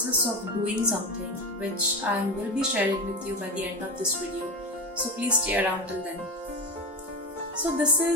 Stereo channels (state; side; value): normal; both; correlation 0.20